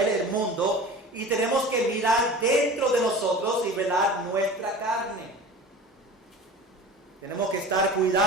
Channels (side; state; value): both; normal; correlation 0.37